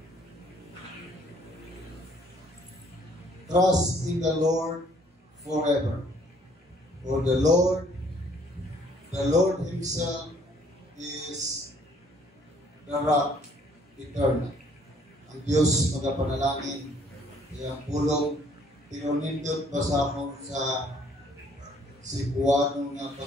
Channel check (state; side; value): normal; both; correlation 0.62